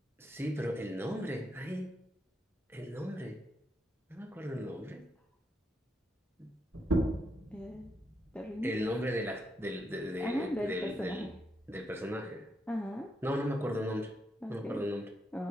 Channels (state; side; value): normal; both; correlation 0.81